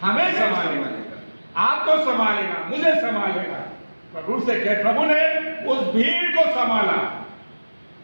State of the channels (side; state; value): both; inverted; correlation -1.00